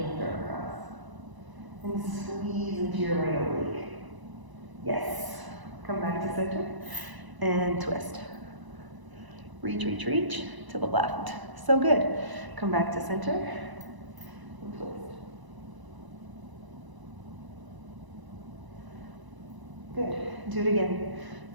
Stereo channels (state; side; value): late; left; 1.0 ms